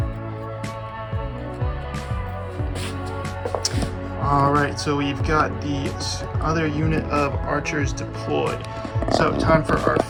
All right, so we've got the other unit of archers deployed. So time for our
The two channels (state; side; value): identical; both; correlation 1.00